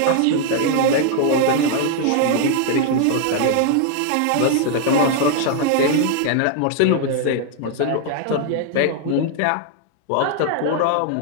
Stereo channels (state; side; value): different; both; correlation 0.00